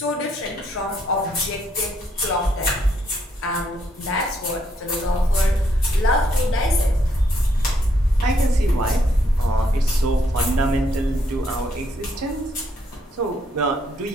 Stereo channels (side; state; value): both; normal; correlation 0.73